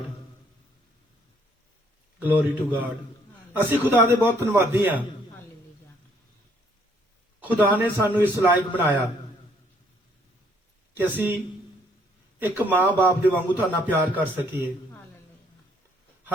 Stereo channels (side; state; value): both; normal; correlation 0.66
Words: glory to God. ਅਸੀਂ ਖੁਦਾ ਦੇ ਬਹੁਤ ਧੰਨਵਾਦੀ ਆ। ਹਾਲੇਲੂਇਆ। ਖੁਦਾ ਨੇ ਸਾਨੂੰ ਇਸ ਲਾਇਕ ਬਣਾਇਆ ਕਿ ਅਸੀਂ ਇੱਕ ਮਾਂ-ਬਾਪ ਦੇ ਵਾਂਗੂ ਤੁਹਾਡਾ ਪਿਆਰ ਕਰ ਸਕੀਏ। ਹਾਲੇਲੂਇਆ।